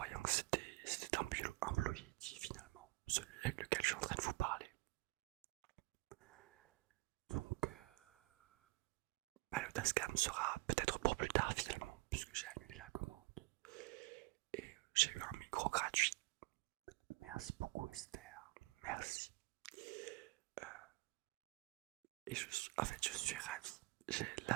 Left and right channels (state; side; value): quieter; left; 22.8 dB